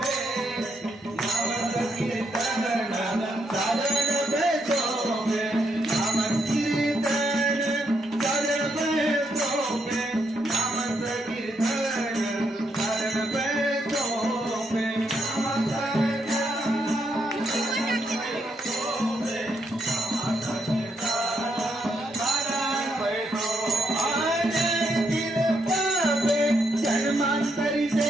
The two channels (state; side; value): normal; both; correlation 0.78